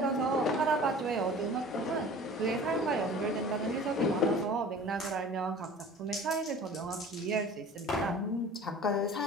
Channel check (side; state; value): both; normal; correlation 0.43